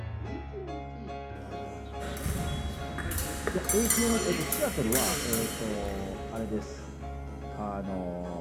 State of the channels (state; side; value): identical; both; correlation 1.00